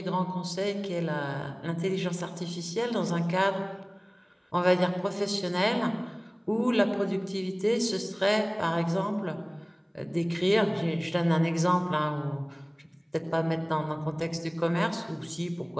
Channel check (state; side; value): identical; both; correlation 1.00